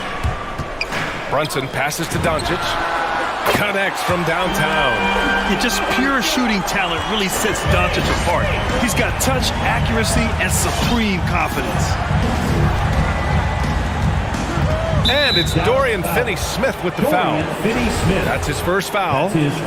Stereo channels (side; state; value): both; identical; correlation 1.00